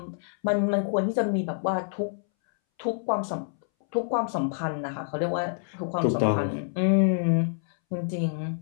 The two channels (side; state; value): right; silent; 60 dB below the other